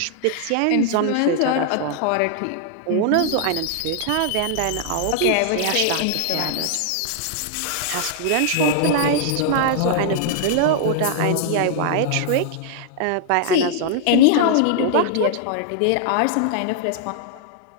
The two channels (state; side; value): different; both; correlation -0.01